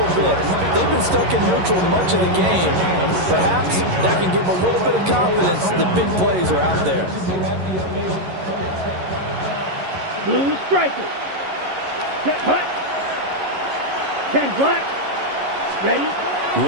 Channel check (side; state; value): left; late; 11 ms